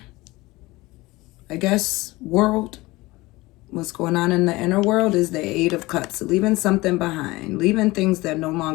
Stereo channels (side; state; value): right; quieter; 20.7 dB